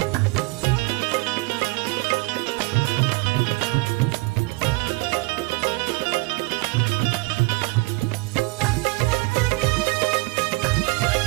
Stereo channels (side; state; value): left; quieter; 25.1 dB